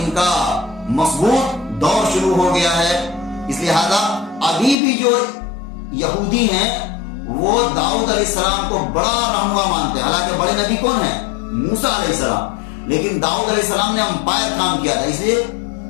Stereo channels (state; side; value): drops out; right; at 4.8 s